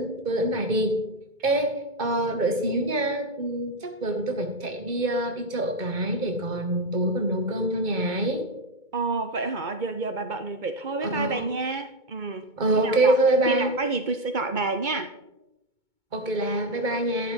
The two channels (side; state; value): left; late; 2.2 ms